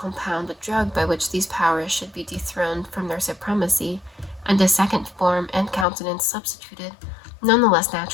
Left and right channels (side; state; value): right; drops out; at 5.9 s